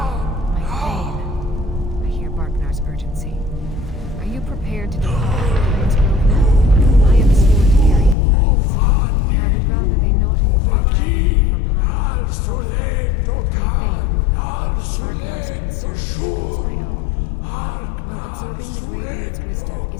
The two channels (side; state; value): right; drops out; at 8.2 s